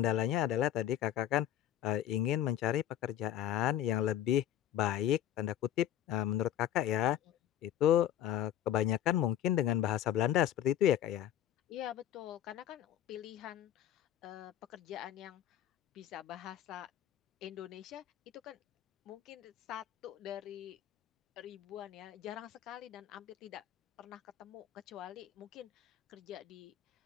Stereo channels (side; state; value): right; quieter; 11.5 dB